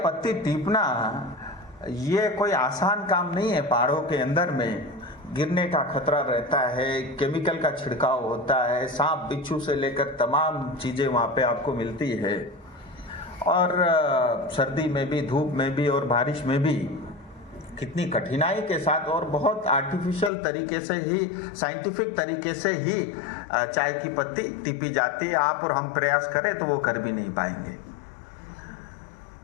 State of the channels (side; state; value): right; drops out; at 20.3 s